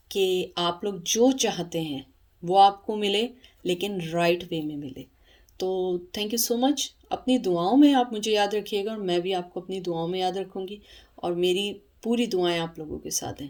कि आप लोग जो चाहते हैं वो आपको मिले, लेकिन राइट वे में मिले। तो थैंक यू सो मच। अपनी दुआओं में आप मुझे याद रखिएगा और मैं भी आपको अपनी दुआओं में याद रखूँगी, और मेरी पूरी दुआएं आप लोगों के साथ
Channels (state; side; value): identical; both; correlation 1.00